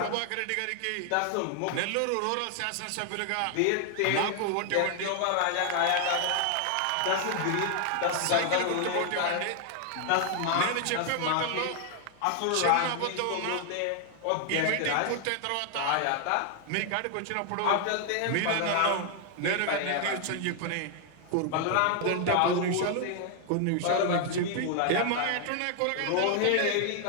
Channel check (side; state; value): both; different; correlation 0.00